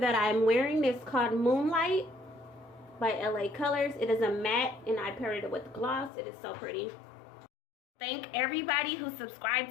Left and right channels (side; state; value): right; drops out; at 6.1 s